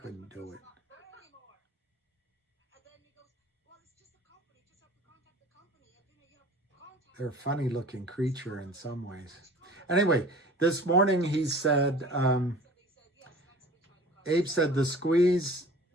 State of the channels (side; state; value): both; normal; correlation 0.44